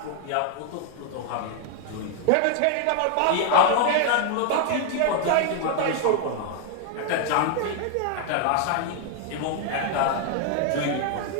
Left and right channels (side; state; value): both; different; correlation 0.00